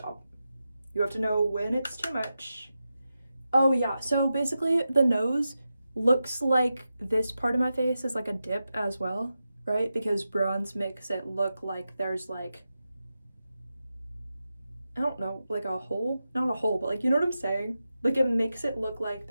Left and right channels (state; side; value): inverted; both; correlation -0.91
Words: You have to know when it's too much. Oh yeah, so basically the nose looks like this part of my face is like a dip as well, right? Because bronze makes it look like there's like, I don't know, like a hole? Not a hole, but like, you know what I'm saying? Like, it makes it look like